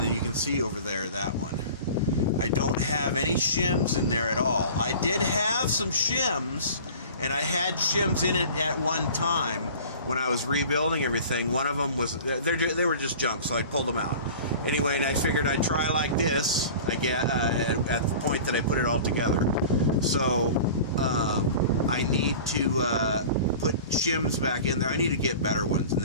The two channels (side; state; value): both; inverted; correlation -0.40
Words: you can see over there that one, I don't have any shims in there at all. I did have some shims, and I had shims in it at one time when I was rebuilding everything. One of them was, they were just junk, so I pulled them out. Anyway, and I figured I'd try like this, at the point that I put it all together. So, I need to put shims back in there. I need to get better ones and